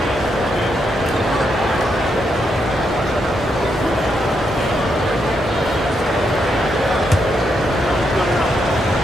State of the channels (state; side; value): normal; both; correlation 0.80